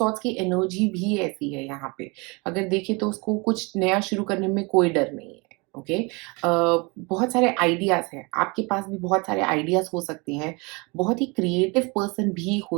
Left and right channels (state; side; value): quieter; left; 28.3 dB